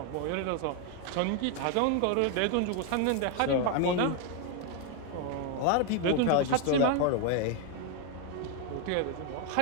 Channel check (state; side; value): different; both; correlation 0.01